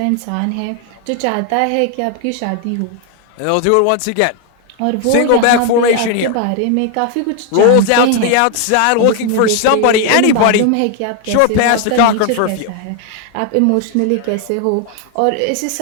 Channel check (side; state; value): both; different; correlation 0.00